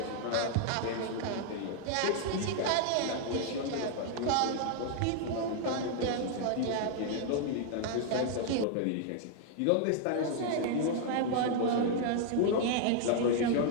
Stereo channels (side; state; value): both; different; correlation 0.00